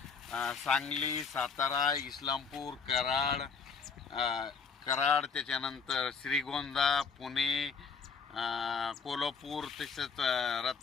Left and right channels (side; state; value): right; quieter; 5.5 dB